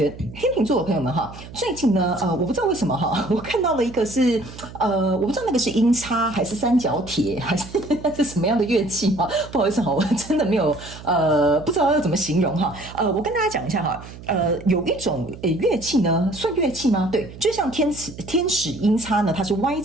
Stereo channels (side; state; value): right; noise; hum, 16 dB below the sound